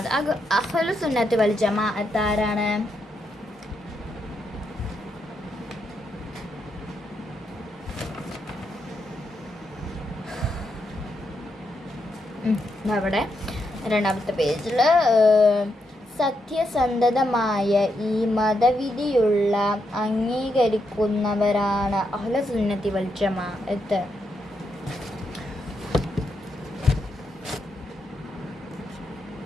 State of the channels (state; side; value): normal; both; correlation 0.82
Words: അഹ്ലു സുന്നത്ത് വൽ ജമാഅത്ത് ആരാണ്? അവിടെ 2ാമത്തെ പേജിൽ സത്യസന്ധമായ ഈ മതവിധിയുള്ള അംഗീകരിക്കുന്നവരാണ് അഹ്ലു സുന്നത്തി വൽ ജമാഅത്ത്.